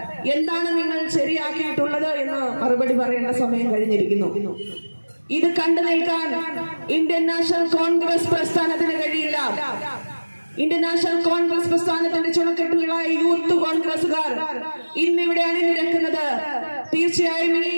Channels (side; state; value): both; inverted; correlation -1.00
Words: എന്താണ് നിങ്ങൾ ശരിയാക്കിയിട്ടുള്ളത് എന്ന് മറുപടി പറയേണ്ട സമയം കഴിഞ്ഞിരിക്കുന്നു. ഇത് കണ്ടു നിൽക്കാൻ ഇന്ത്യൻ നാഷണൽ കോൺഗ്രസ് പ്രസ്ഥാനത്തിന് കഴിയില്ല. ഇന്ത്യൻ നാഷണൽ കോൺഗ്രസ് പ്രസ്ഥാനത്തിന്റെ ചുണക്കെട്ടുകളായ യൂത്ത് കോൺഗ്രസുകാർ ഇന്നിവിടെ അണിനിരക്കുന്നത് തീർച്ചയായും ഈ